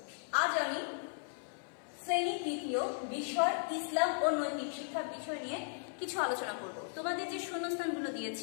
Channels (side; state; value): right; silent; 53 dB below the other